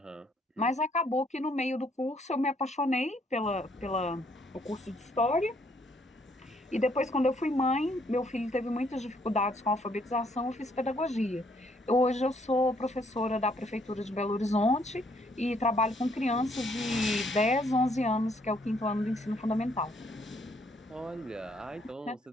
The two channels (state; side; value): normal; both; correlation 0.68